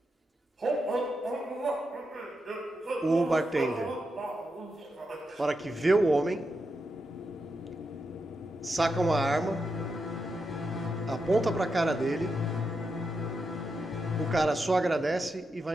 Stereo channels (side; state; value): both; normal; correlation 0.86